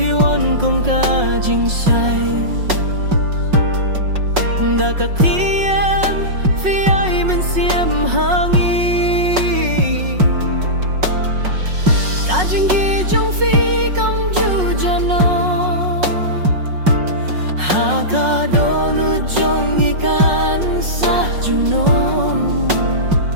one cùng cả chính say đã cả khi em phía ai mình xiêm hàng y cả chính ghi trong phi cầm ju jano ha cả đô nu trong ikan sa junom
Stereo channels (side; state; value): left; late; 5.4 ms